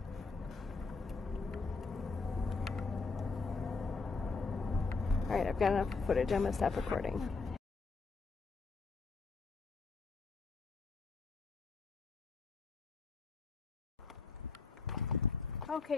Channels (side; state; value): right; quieter; 4.3 dB